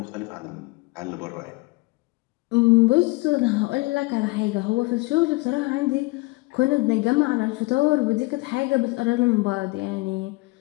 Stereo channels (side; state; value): right; quieter; 24.1 dB